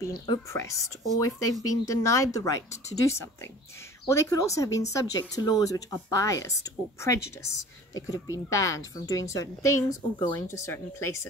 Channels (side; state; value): both; normal; correlation 0.45